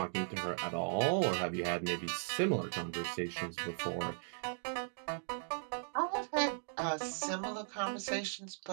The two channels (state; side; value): silent; left; digital silence